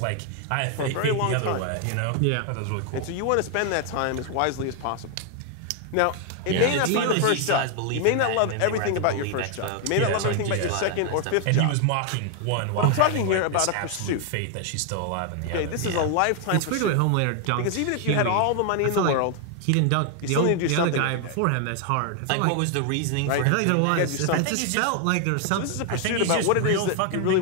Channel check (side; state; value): both; different; correlation 0.00